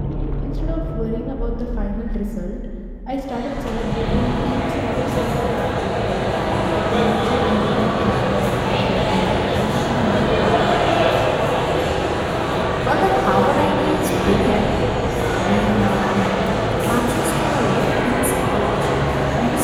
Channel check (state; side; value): identical; both; correlation 1.00